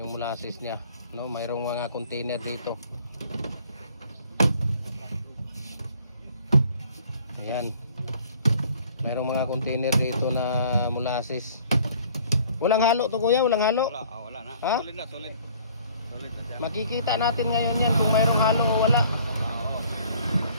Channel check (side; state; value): both; inverted; correlation -0.56